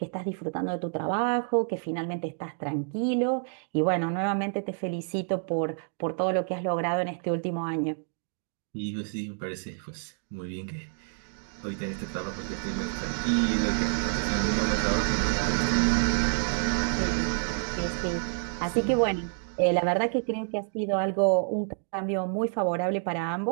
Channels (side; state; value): left; silent; 59 dB below the other